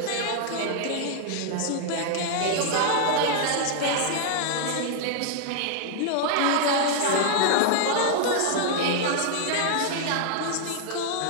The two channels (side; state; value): both; different; correlation 0.00